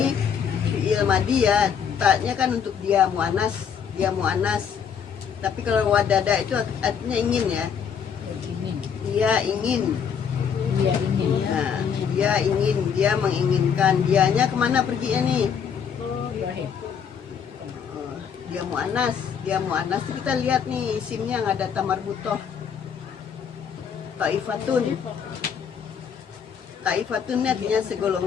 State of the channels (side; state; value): right; quieter; 7.3 dB